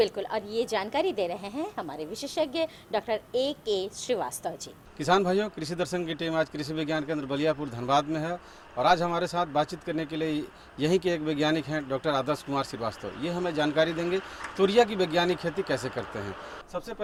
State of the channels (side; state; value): both; identical; correlation 1.00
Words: और ये जानकारी दे रहे हैं हमारे विशेषज्ञ डॉक्टर A.K. श्रीवास्तव जी। किसान भाइयों, कृषि दर्शन की टीम आज कृषि विज्ञान केंद्र बलियापुर धनबाद में है और आज हमारे साथ बातचीत करने के लिए यहीं के एक वैज्ञानिक हैं डॉक्टर आदर्श कुमार श्रीवास्तव। ये हमें जानकारी देंगे तोरिया की वैज्ञानिक खेती कैसे करते हैं। सबसे